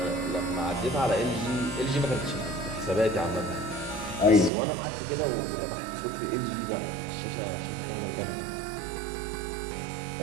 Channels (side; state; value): left; drops out; at 4.5 s